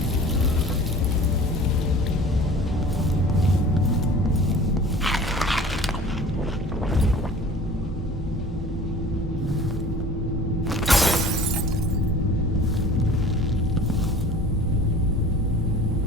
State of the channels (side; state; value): both; normal; correlation 0.44